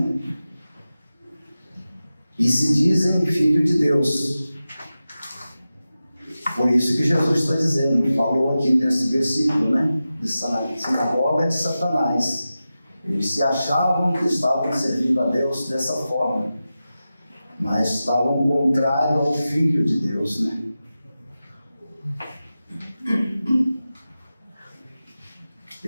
E se dizem filho de Deus. Por isso que Jesus está dizendo, falou aqui nesse versículo, de sinagoga de Satanás. Eles se achavam que estavam servindo a Deus dessa forma, mas estavam contrário ao Filho de Deus,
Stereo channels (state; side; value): inverted; both; correlation -0.93